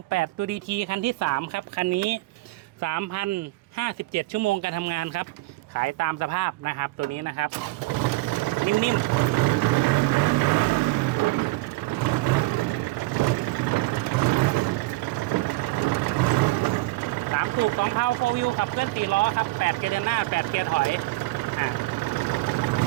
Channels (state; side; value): quieter; left; 20.2 dB